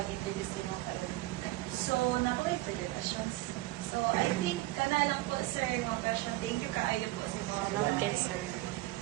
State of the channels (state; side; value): quieter; left; 18.0 dB